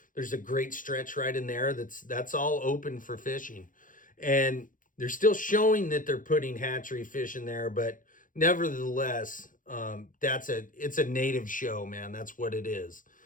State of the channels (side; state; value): right; late; 0.39 ms